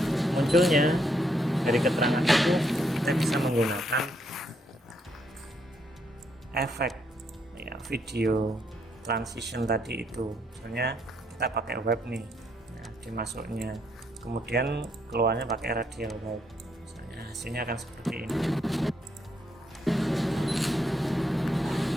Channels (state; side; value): normal; both; correlation 0.74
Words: munculnya dari keterangan itu kita bisa menggunakan efek ya, video transition tadi itu. Misalnya kita pakai web nih, ya, dimasuknya, kemudian keluarnya pakai radial web. Misalnya hasilnya akan seperti ini.